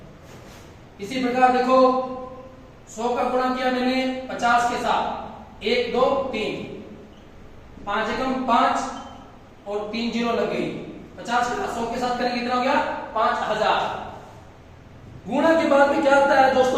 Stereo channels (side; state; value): both; identical; correlation 1.00